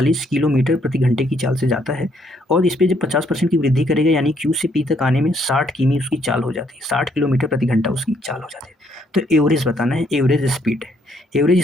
किलोमीटर प्रति घंटे की चाल से जाता है और इस पर जब 50% की वृद्धि करेगा यानी क्यू से पी तक आने में 60 किमी उसकी चाल हो जाती है, 60 किलोमीटर प्रति घंटा उसकी चाल हो जाती है। तो एवरेज बताना है, एवरेज स्पीड। एवरेज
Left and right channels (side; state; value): both; normal; correlation 0.70